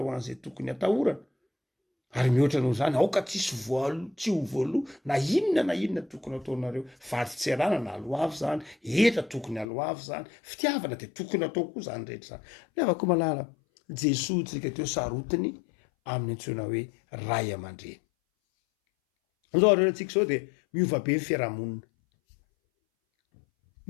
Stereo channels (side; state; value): right; drops out; at 9.7 s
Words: ho an'izay tokony hatahorana. Ary mihoatra noho zany aoka tsisy tsy ho voaloha na inona tokony ataonareo, vady tsy arana na aloavy zany, eta tokony aloavy zany, fitiavana de tokony atao koa zany rehetra zany. Nefa malala Jesoa tsika teo sarotiny amin'ny antsoina hoe ray aman-dreny. Zao reherantsika zao de miova be ny fiarahamonina.